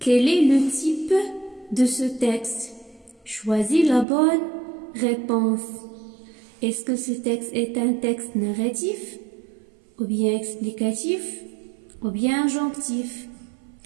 est le type de ce texte? Choisis la bonne réponse. Est-ce que ce texte est un texte narratif, ou bien explicatif, ou bien injonctif?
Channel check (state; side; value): drops out; left; at 4.0 s